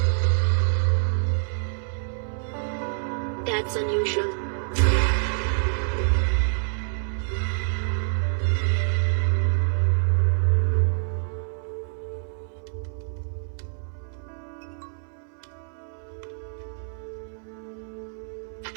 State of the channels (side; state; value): left; silent; 58 dB below the other